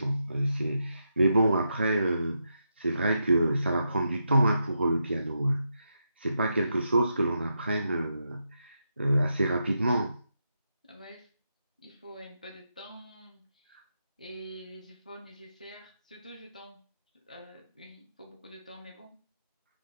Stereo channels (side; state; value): both; inverted; correlation -0.84